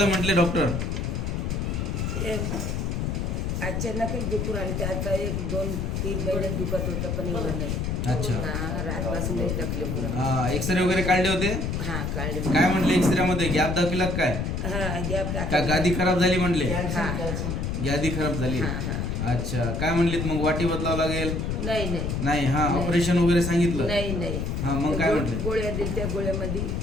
म्हटले डॉक्टर? अचानकच दुखून आले. ते आता 1-2-3 महिने दुखत होतं पण एवढं नाही. अच्छा. रातपासून नाही तकलीफ. हा, एक्सरे वगैरे काढले होते? हा काढले. काय म्हटले एक्सरे मध्ये? गॅप दाखविला काय? हा गॅप का गादी खराब झाली म्हटले? हा गादी खराब झाली. अच्छा. काय म्हणलीत मग? वाटी बदलावं लागेल? नाही. नाही. हा, ऑपरेशन वगैरे सांगितलं? नाही. हा, मग काय म्हटले? गोळ्या दिल्या, त्या गोळ्यामध्ये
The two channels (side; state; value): left; noise; rumble, 1 dB below the sound